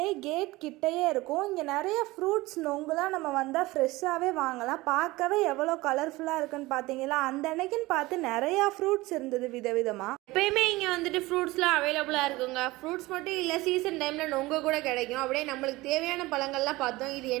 கேட் கிட்டேயே இருக்கும். இங்கே நிறைய ஃப்ரூட்ஸ் நொங்குலாம் நம்ம வந்தால் ஃப்ரெஷ்ஷாகவே வாங்கலாம். பார்க்கவே எவ்வளோ கலர்ஃபுல்லாக இருக்குன்னு பார்த்தீங்களா? அந்த அன்னைக்குன்னு பார்த்து நிறையா ஃப்ரூட்ஸ் இருந்தது விதவிதமாக. எப்பயுமே இங்கே வந்துட்டு ஃப்ரூட்ஸ்லாம் அவைலபிளாக இருக்குங்க. ஃப்ரூட்ஸ் மட்டும் இல்லை, சீசன் டைமில் நொங்க கூட கிடைக்கும். அப்படியே நம்மளுக்கு தேவையான பழங்கள்லாம் பார்த்தோம். இது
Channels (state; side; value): quieter; left; 20.2 dB